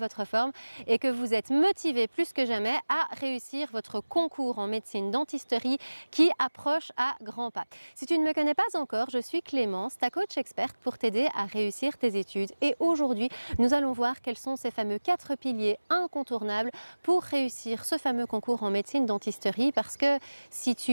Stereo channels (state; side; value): inverted; both; correlation -1.00